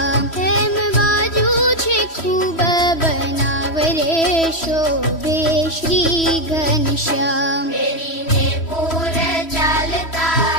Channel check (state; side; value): late; right; 3.1 ms